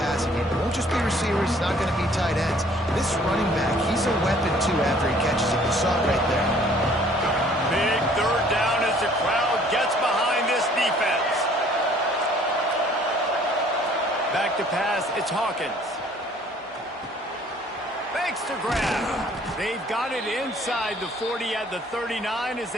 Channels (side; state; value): both; normal; correlation 0.57